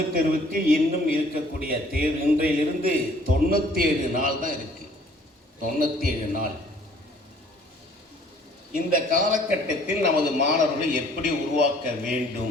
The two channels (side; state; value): both; normal; correlation 0.57